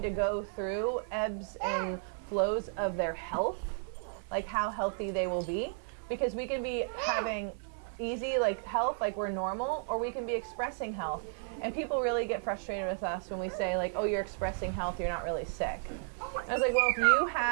to go through ebbs and flows of their health, like how healthy they will be, because we can be having easy like health, like we're normal, or we can be expressing health. And people really get frustrated with us when we say like, oh, you're expressing health, you're not really sick. And I was like, well, if you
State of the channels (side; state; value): left; silent; digital silence